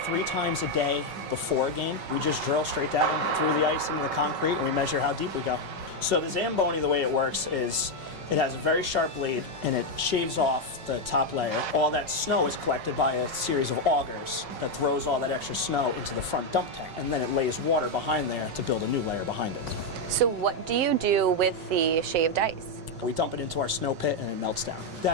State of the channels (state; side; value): late; left; 5.4 ms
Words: 3 times a day before a game. We just drill straight down through the ice into the concrete and we measure how deep we go. So the Zamboni, the way it works is it has a very sharp blade and it shaves off the top layer. All that snow is collected by a series of augers that throws all that extra snow into the front dump tank, and then it lays water behind there to build a new layer behind it. So what do you do with the shaved ice? We dump it into our snow pit and it melts down.